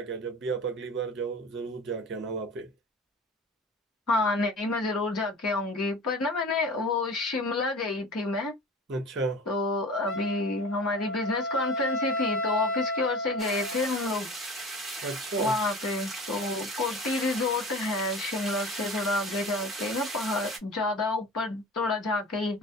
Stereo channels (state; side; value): normal; both; correlation 0.37